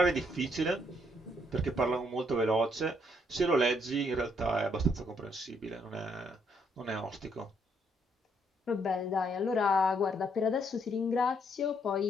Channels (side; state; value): both; normal; correlation 0.71